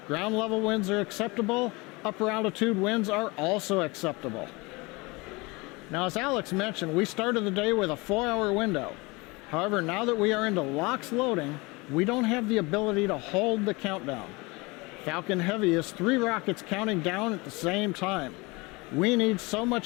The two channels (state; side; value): quieter; right; 25.2 dB